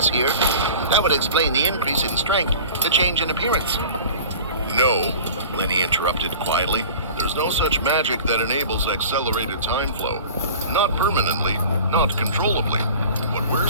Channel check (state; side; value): inverted; both; correlation -0.40